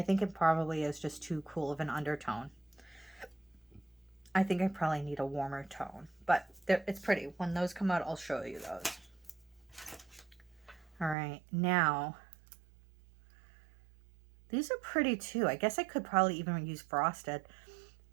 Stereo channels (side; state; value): left; drops out; at 11.2 s